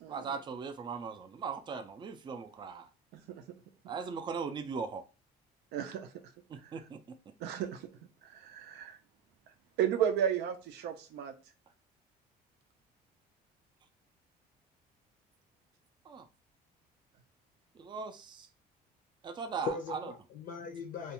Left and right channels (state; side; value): quieter; left; 6.1 dB